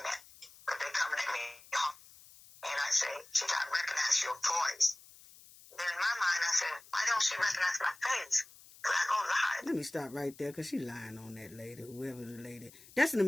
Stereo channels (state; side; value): noise; left; hiss, 22 dB below the sound